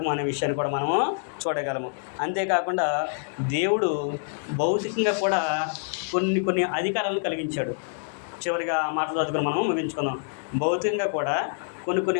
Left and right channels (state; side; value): silent; right; digital silence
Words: అనే విషయాన్ని కూడా మనము చూడగలము. అంతేకాకుండా దేవుడు భౌతికంగా కూడా కొన్ని అధికారాలను కలిగించాడు. చివరిగా ఆ మాటలు చదువుకుని మనం ముగించుకుందాం. భౌతికంగా కూడా